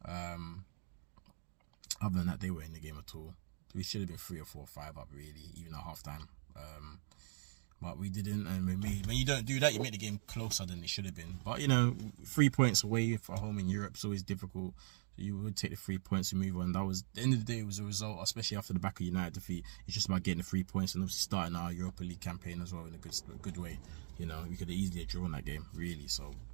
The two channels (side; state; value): left; silent; digital silence